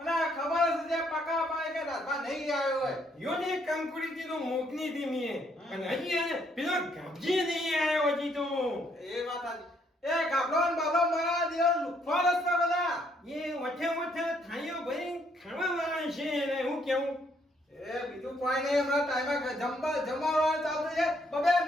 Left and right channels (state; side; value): normal; both; correlation 0.70